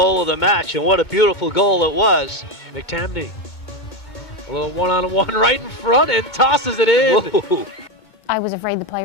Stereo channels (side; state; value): right; late; 2.2 ms